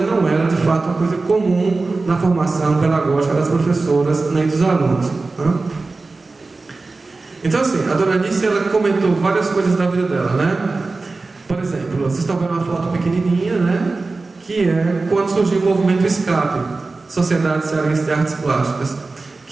não era de fato uma coisa comum na formação pedagógica das professoras nem dos alunos, né? Então, assim, a dona Anice, ela comentou várias coisas da vida dela, né? Por exemplo, vocês estão vendo uma foto pequenininha, né? Que é quando surgiu o movimento SCAP, Sociedade Cearense de Artes Plásticas,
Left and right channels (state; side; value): quieter; left; 3.7 dB